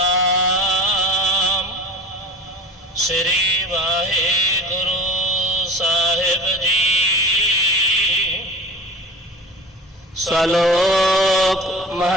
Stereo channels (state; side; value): normal; both; correlation 0.34